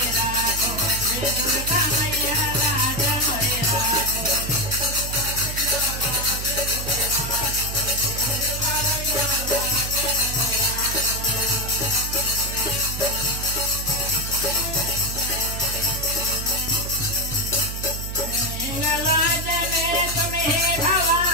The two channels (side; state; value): right; noise; hum, 6 dB below the sound